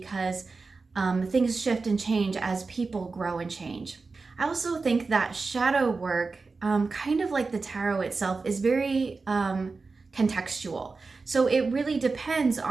things shift and change as people grow and change. I also think that shadow work, kind of like the tarot itself, is very contextual. So it really depends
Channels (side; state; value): left; quieter; 4.1 dB